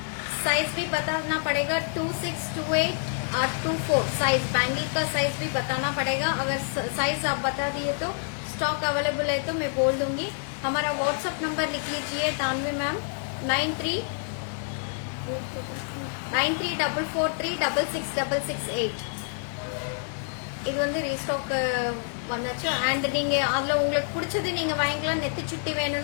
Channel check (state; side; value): silent; right; 60 dB below the other